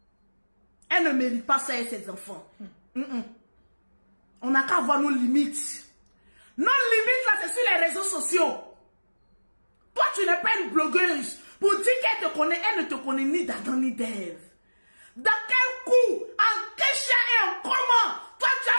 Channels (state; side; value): inverted; both; correlation -1.00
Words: elle ne mérite pas ça et ses enfants. On n'a qu'à avoir nos limites. Nos limites, là, c'est sur les réseaux sociaux. Toi, tu n'es pas une blogueuse. Pour dire qu'elle te connaît, elle ne te connaît ni d'Adam ni d'Ève. Dans quel coup, en quel chien et en comment, toi, tu